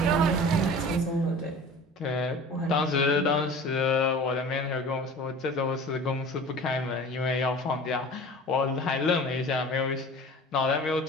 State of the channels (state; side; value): normal; both; correlation 0.40